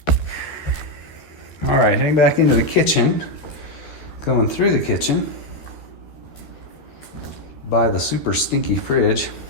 All right, heading back into the kitchen. Going through the kitchen by the super stinky fridge.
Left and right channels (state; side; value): late; right; 13 ms